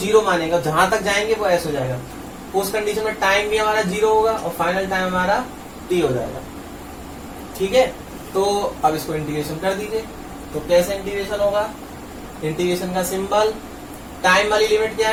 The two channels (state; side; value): identical; both; correlation 1.00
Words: मानेगा, जहां तक जाएंगे वो s हो जाएगा। उस कंडीशन में टाइम भी हमारा 0 होगा और फाइनल टाइम हमारा t हो जाएगा। ठीक है, तो अब इसको इंटीग्रेशन कर दीजिए। तो कैसे इंटीग्रेशन होगा, इंटीग्रेशन का सिंबल, टाइम वाली लिमिट क्या